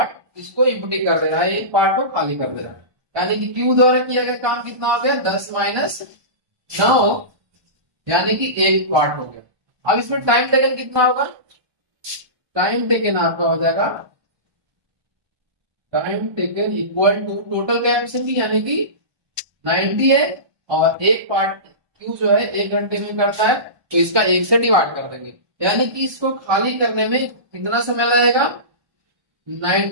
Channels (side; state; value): left; late; 1.2 ms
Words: इसको इम्पटी कर दे रहा है, एक पार्ट को खाली कर दे रहा है, यानी कि क्यू द्वारा किया गया काम कितना हो गया, 10 - 9, यानी कि एक पार्ट हो गया। अब इसमें टाइम टेकन कितना होगा, टाइम टेकन आपका हो जाएगा, time taken equal to total capacity, यानी कि 90 है, और एक पार्ट क्यू जो है 1 घंटे में करता है, तो इसका 1 से डिवाइड कर देंगे, यानी कि इसको खाली करने में कितना समय लगेगा,